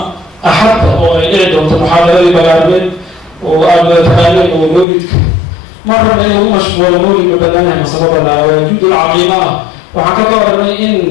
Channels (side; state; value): right; drops out; at 4.9 s